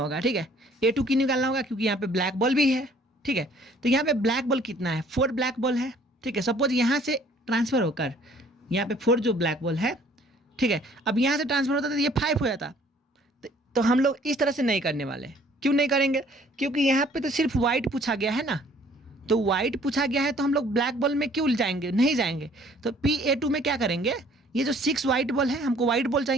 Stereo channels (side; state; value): both; normal; correlation 0.57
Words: ठीक है। A2 की निकालना होगा क्योंकि यहाँ पे ब्लैक बॉल भी है, ठीक है। तो यहाँ पे ब्लैक बॉल कितना है, 4 ब्लैक बॉल है, ठीक है। सपोज यहाँ से ट्रांसफर होकर यहाँ पे 4 जो ब्लैक बॉल है, ठीक है। अब यहाँ से ट्रांसफर होता तो ये 5 हो जाता। तो हम लोग इस तरह से नहीं करने वाले। क्यों नहीं करेंगे, क्योंकि यहाँ पे तो सिर्फ वाइट पूछा गया है ना, तो वाइट पूछा गया है, तो हम लोग ब्लैक बॉल में क्यों जाएंगे, नहीं जाएंगे। तो PA2 में क्या करेंगे, ये जो 6 वाइट बॉल है, हमको वाइट बॉल